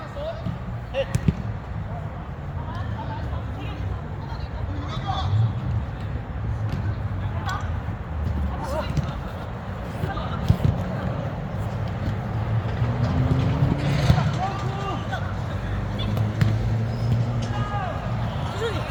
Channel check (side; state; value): both; identical; correlation 1.00